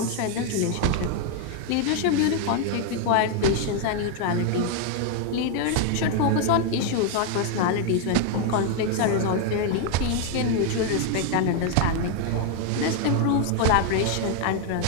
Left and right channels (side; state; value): both; different; correlation 0.01